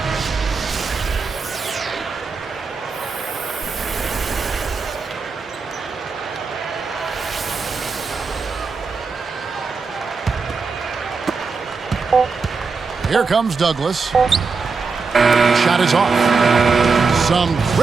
Here comes Douglas. Shot is off. Some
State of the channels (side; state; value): left; quieter; 4.7 dB